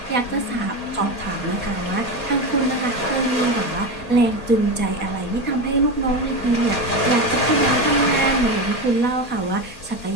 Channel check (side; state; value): right; late; 4.2 ms